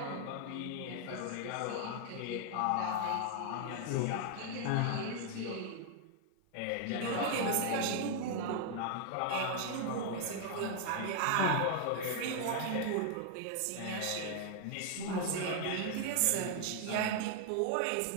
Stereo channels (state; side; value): different; both; correlation 0.00